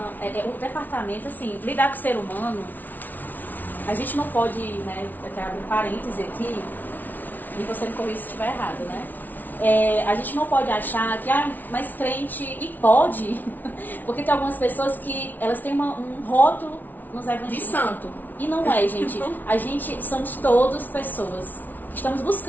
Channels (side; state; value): right; late; 0.083 ms